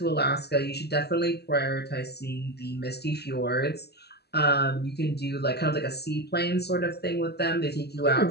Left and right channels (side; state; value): right; late; 0.47 ms